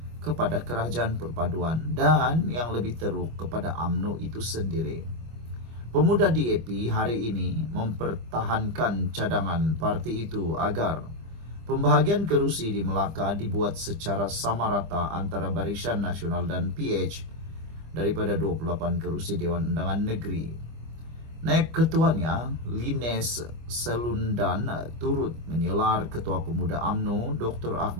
kepada kerajaan perpaduan dan yang lebih teruk kepada UMNO itu sendiri. Pemuda DAP hari ini mempertahankan cadangan parti itu agar pembahagian kerusi di Melaka dibuat secara sama rata antara Barisan Nasional dan PH daripada 28 kerusi Dewan Undangan Negeri. Naib ketuanya, Lines Selundan, turut menyelar Ketua Pemuda UMNO Dr.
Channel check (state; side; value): late; left; 25 ms